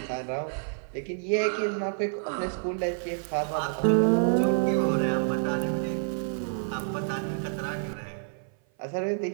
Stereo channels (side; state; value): left; silent; 55 dB below the other